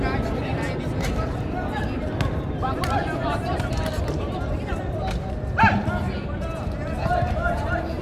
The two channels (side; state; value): both; identical; correlation 1.00